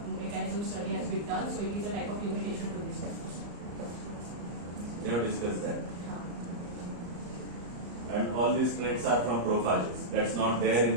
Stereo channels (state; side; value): late; left; 34 ms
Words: mechanism study has been done, so it is a type of limitation to this paper. They have discussed that. And all these traits are from prophages. That's not there in